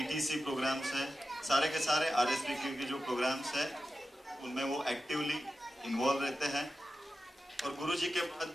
प्रोग्राम्स है, सारे के सारे आरएसवी के जो प्रोग्राम्स है उनमें वो एक्टिवली इन्वॉल्व रहते हैं। और गुरुजी के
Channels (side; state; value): both; normal; correlation 0.92